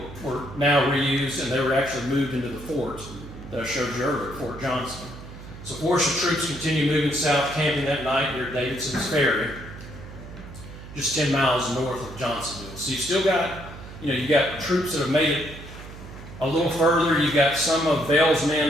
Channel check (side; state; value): right; noise; hum, 14 dB below the sound